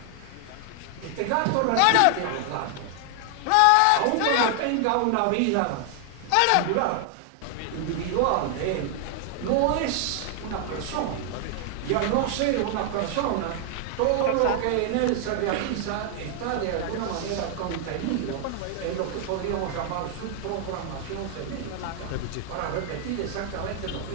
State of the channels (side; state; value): both; different; correlation 0.00